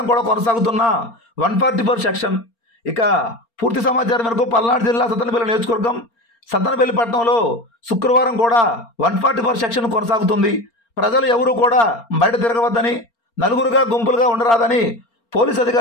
కూడా కొనసాగుతున్న 144 సెక్షన్. ఇక పూర్తి సమాచారం మేరకు పల్నాడు జిల్లా సత్తెనపల్లి నియోజకవర్గం సత్తెనపల్లి పట్టణంలో శుక్రవారం కూడా 144 సెక్షన్ కొనసాగుతుంది. ప్రజలు ఎవరూ కూడా బయట తిరగవద్దని, నలుగురుగా గుంపులుగా ఉండరాదని పోలీసు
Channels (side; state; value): right; late; 4.3 ms